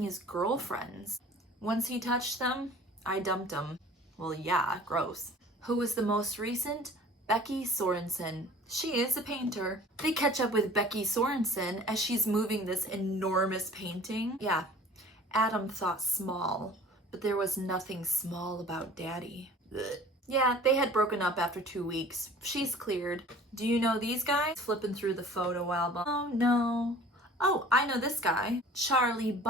his girlfriends. Once he touched them, I dumped him. Well, yeah, gross. Who was the most recent? Becky Sorensen. She is a painter. They catch up with Becky Sorensen as she's moving this enormous painting. Yeah, Adam thought small, but there was nothing small about Daddy. Ugh. Yeah, they had broken up after 2 weeks. She's cleared. Do you know these guys? Flipping through the photo album. Oh no. Oh, I know this guy. Charlie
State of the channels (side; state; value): both; normal; correlation 0.46